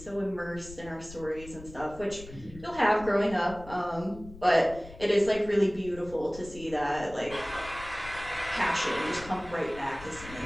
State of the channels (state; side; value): noise; left; rumble, 16 dB below the sound